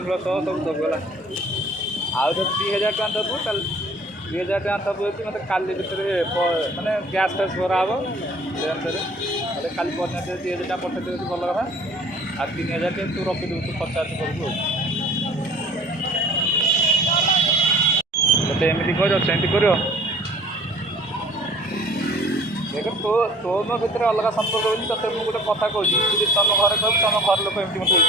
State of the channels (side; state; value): both; normal; correlation 0.50